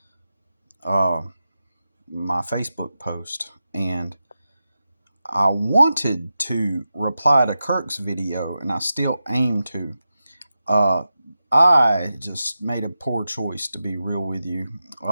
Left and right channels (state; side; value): inverted; both; correlation -0.91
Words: my Facebook post, and I wanted to reply to Kirk's video and I still aim to. I just made a poor choice, to be real with you.